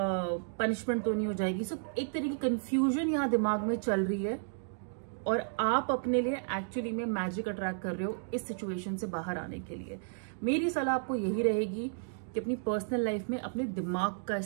पनिशमेंट तो नहीं हो जाएगी। एक तरह की कंफ्यूजन यहाँ दिमाग में चल रही है और आप अपने लिए एक्चुअली में मैजिक अट्रैक्ट कर रहे हो इस सिचुएशन से बाहर आने के लिए। मेरी सलाह आपको यही रहेगी कि अपनी पर्सनल लाइफ में अपने दिमाग का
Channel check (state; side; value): silent; left; digital silence